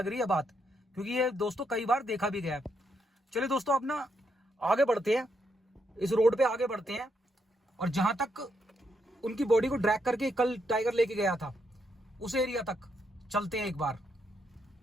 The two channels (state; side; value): normal; both; correlation 0.78